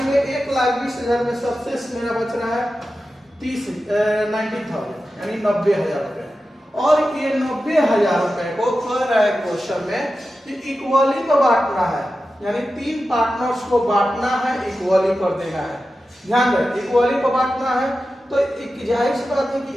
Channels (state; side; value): normal; both; correlation 0.92